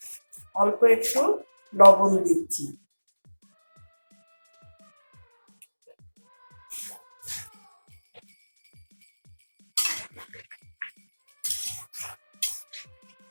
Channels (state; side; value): inverted; both; correlation -1.00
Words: অল্প একটু লবণ দিচ্ছি,